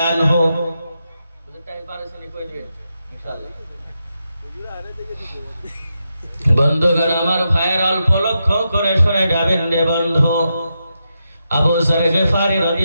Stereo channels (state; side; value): inverted; both; correlation -0.86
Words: আনহু, বন্ধুগণ আমার ভাইয়ের অল্প লক্ষ্য করে শুনে যাবেন রে বন্ধু। আবু যর গিফারি